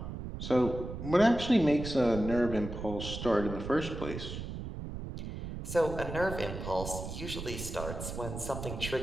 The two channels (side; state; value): right; noise; rumble, 7 dB below the sound